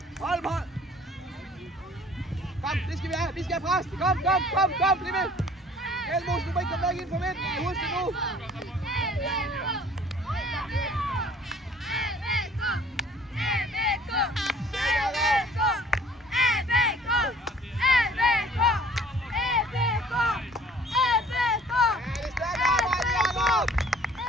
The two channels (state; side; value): normal; both; correlation 0.53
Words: Hold, hold! Kom, det skal vi have, vi skal have pres! Kom, bliv med! Elmos, du må ikke komme væk ind for midten, husk det nu!